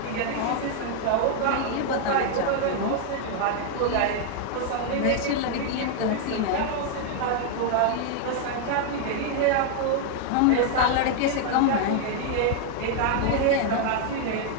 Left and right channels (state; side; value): different; both; correlation 0.00